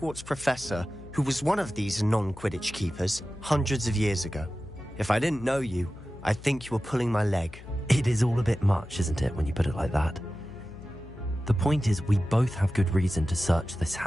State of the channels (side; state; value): left; noise; hum, 17 dB below the sound